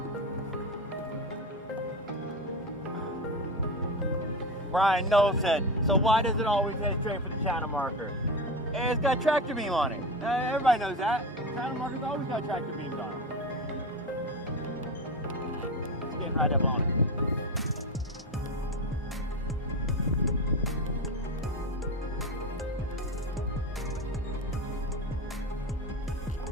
Brian Knoll said, so why does it always head straight for the channel marker? And it's got tractor beam on it. Everybody knows that. Channel marker's always got tractor beams on it. It's getting right up on it.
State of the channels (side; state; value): both; normal; correlation 0.22